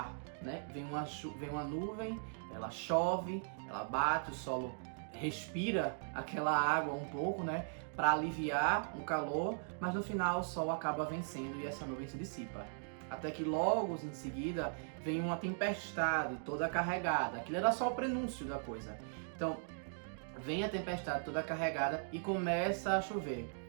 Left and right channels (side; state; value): left; silent; digital silence